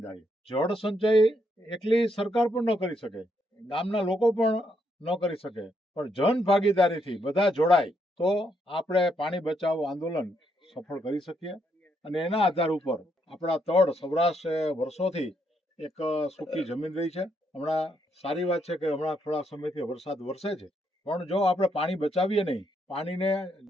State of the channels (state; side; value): normal; both; correlation 0.76